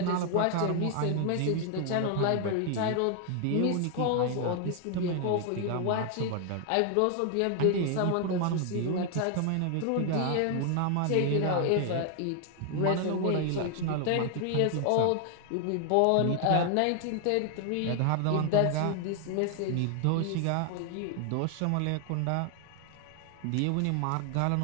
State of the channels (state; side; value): different; both; correlation 0.00